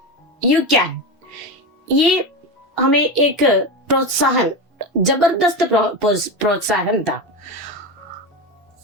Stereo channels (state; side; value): normal; both; correlation 0.18